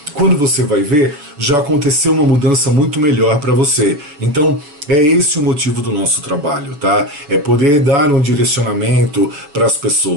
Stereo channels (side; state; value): left; late; 7.0 ms